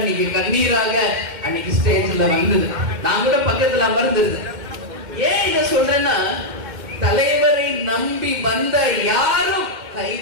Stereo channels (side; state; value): left; late; 2.1 ms